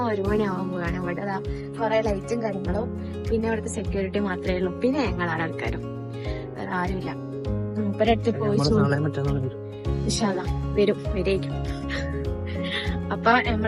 1 മണിയാവാൻ പോവാണ്. ഇവിടെ കുറെ ലൈറ്റും കാര്യങ്ങളും, പിന്നെ ഇവിടുത്തെ സെക്യൂരിറ്റി മാത്രമേ ഉള്ളൂ, പിന്നെ ഞങ്ങളാണ് ആൾക്കാരും, വേറെ ആരുമില്ല. മൂപ്പരടുത്ത് പോയി വരേക്കും. അപ്പൊ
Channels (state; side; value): identical; both; correlation 1.00